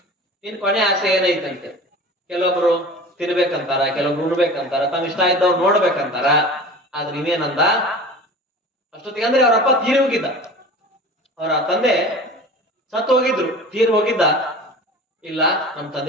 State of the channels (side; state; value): both; normal; correlation 0.38